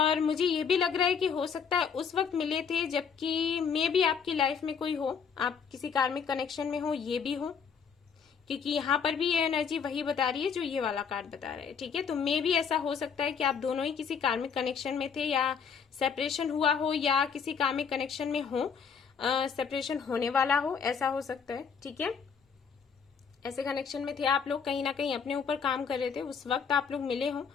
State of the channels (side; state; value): right; quieter; 6.5 dB